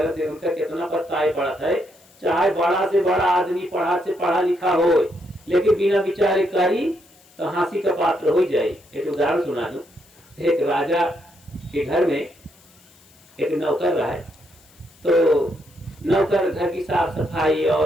उनका कितना पछताए पड़ा है। चाहे बड़ा से बड़ा आदमी पढ़ा से पढ़ा लिखा हो, लेकिन बिना विचारे करी तो हंसी का पात्र हो जाए। एक उदाहरण सुना दूं। एक राजा के घर में एक नौकर रहा है। तो नौकर घर की साफ सफाई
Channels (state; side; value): noise; left; hiss, 28 dB below the sound